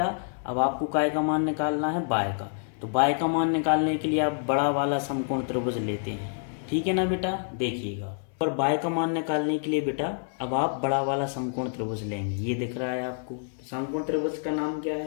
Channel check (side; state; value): right; silent; 60 dB below the other